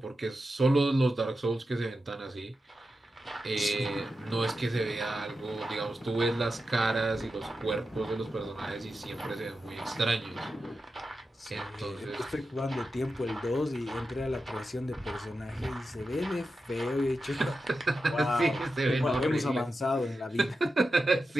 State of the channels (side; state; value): both; normal; correlation 0.90